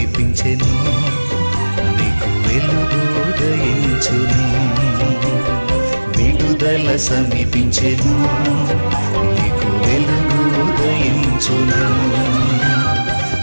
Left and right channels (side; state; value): both; inverted; correlation -1.00